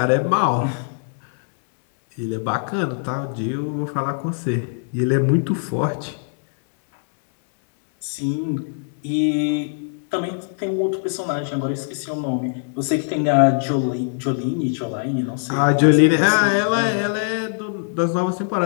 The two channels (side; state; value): right; silent; 65 dB below the other